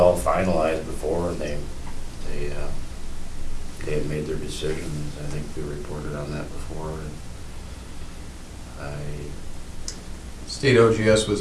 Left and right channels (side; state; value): both; identical; correlation 1.00